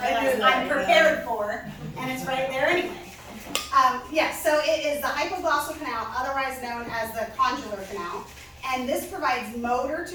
knew realize that, I'm prepared for, and it's right there anyway. Yes, so it is the hypoglossal canal, otherwise known as the condylar canal, and this provides motor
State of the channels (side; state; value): both; identical; correlation 1.00